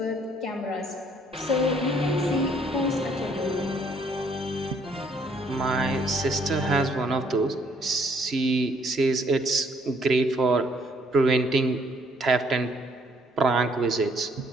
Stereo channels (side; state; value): both; normal; correlation 0.65